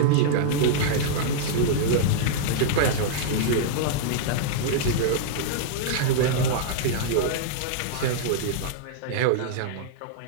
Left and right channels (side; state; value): both; different; correlation -0.02